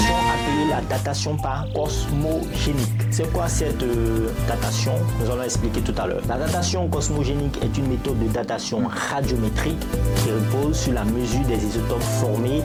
appelée la datation par cosmogénique. C'est quoi cette datation? Nous allons expliquer tout à l'heure. La datation cosmogénique est une méthode de datation radiométrique qui repose sur la mesure des isotopes formés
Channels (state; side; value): identical; both; correlation 1.00